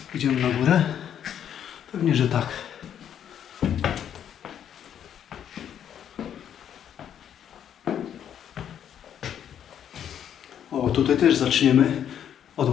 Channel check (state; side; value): quieter; right; 9.4 dB